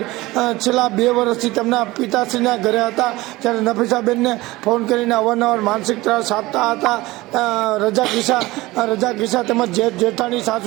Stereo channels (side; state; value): left; quieter; 19.7 dB